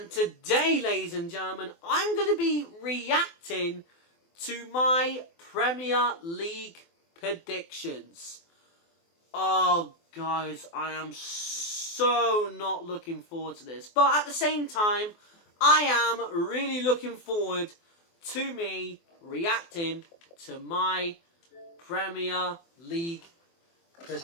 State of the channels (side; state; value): right; late; 24 ms